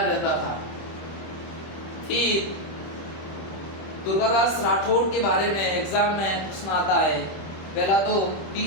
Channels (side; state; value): right; late; 26 ms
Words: रहता था। फिर दुर्गादास राठौड़ के बारे में एग्जाम में प्रश्न आता है। पहला तो